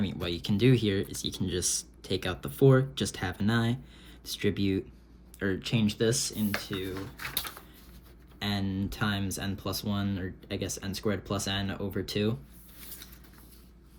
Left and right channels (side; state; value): both; identical; correlation 1.00